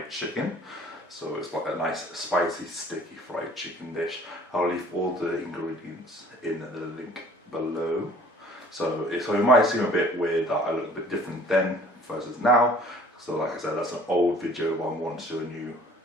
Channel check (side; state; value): both; normal; correlation 0.52